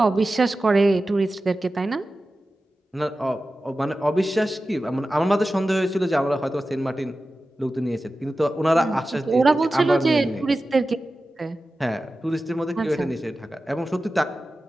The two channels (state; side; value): normal; both; correlation 0.94